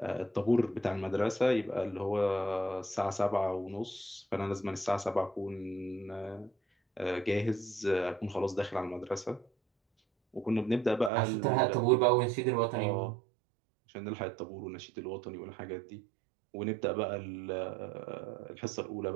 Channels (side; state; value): left; drops out; at 11.1 s